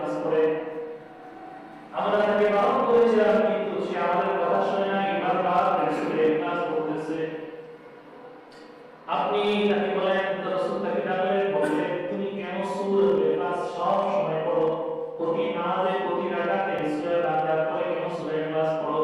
পড়ে আমরা তাকে বারণ করেছিলাম কিন্তু সে আমাদের কথা শুনে না বারবার সূরা ইখলাস পড়তেছে আপনি তাকে বলেন তো রাসূল তাকে ডাকলেন বললেন তুমি কেন সূরা ইখলাস সব সময় পড়ো প্রতি নামাজে প্রতি রাকাতে সূরা ফাতিহা পড়ে কেন সূরা ইখলাস পড়ো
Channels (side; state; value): both; identical; correlation 1.00